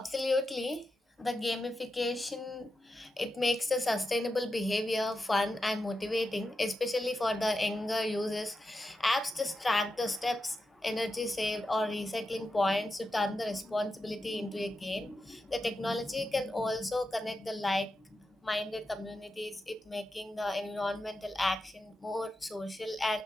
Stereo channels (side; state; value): both; normal; correlation 0.89